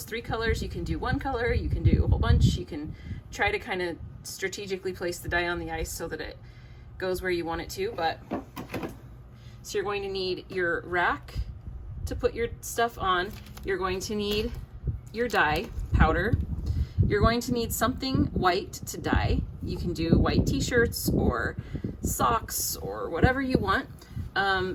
3 colors. You can do 1 color, you can do a whole bunch. You can try to kind of strategically place the dye on the ice so that it goes where you want it to. But so you're going to need your rack to put your stuff on. You're going to need your dye powder. You're going to need something white to dye. You can do white t-shirts or socks or whatever you want.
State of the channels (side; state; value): both; identical; correlation 1.00